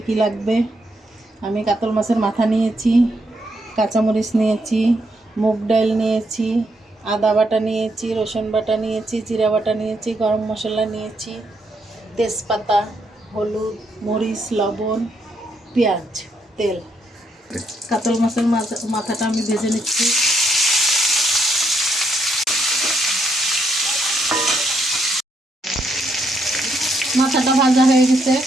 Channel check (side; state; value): both; normal; correlation 0.76